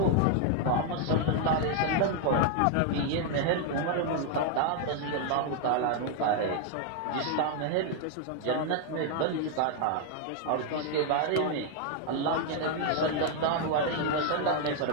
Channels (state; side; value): different; both; correlation 0.00